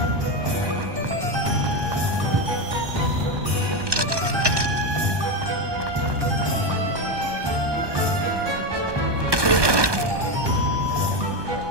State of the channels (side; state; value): left; late; 1.2 ms